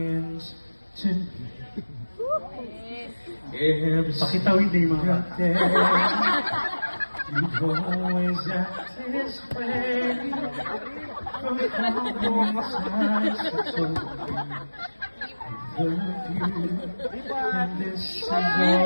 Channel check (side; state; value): both; inverted; correlation -1.00